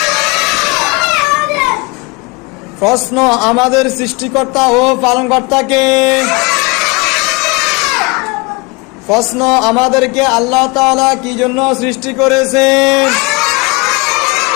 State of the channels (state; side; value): quieter; right; 26.6 dB